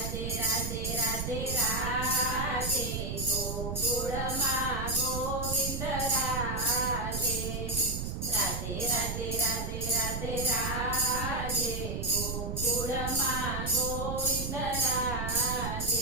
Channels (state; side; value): noise; right; rumble, 3 dB below the sound